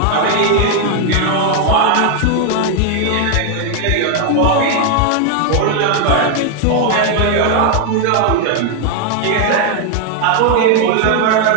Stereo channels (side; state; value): both; different; correlation 0.00